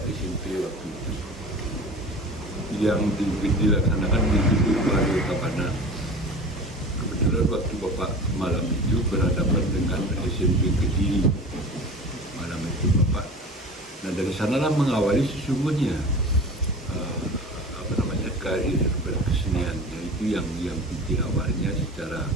SMP waktu itu yang dilaksanakan di Gedung Baru Kapana. Kebetulan waktu Bapak malam itu berhadapan dengan SMP Kediri malam itu Bapak. Nah dari sanalah mengawali sesungguhnya karir berkesenian, yaitu yang inti awalnya secara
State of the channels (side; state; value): both; normal; correlation 0.36